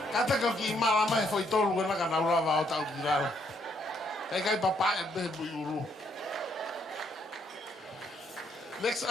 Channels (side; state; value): both; normal; correlation 0.71